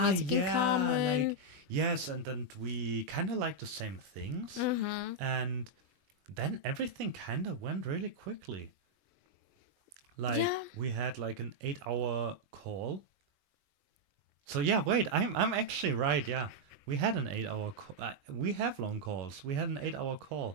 music in yeah. common. Like yes, and then we kind of like the same things, and then everything kind of went really quickly. Like Yeah. we had like an 8-hour call. So yeah, wait, I'm actually right. Yeah, we had an 8-hour call. We have long calls. We had an 8-hour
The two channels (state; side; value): late; left; 21 ms